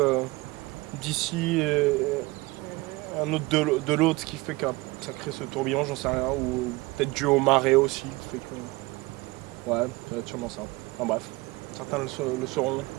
d'ici et un autre de l'autre, ce qui fait que ça crée ce tourbillon, j'en sais rien, ou peut-être dû aux marées aussi, qui fait que... Ouais, ça va être sûrement ça. Enfin bref, certains le sauront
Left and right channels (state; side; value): quieter; left; 22.5 dB